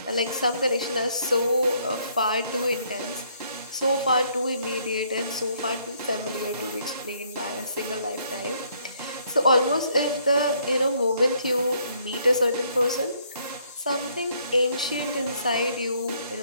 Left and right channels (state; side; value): inverted; both; correlation -0.68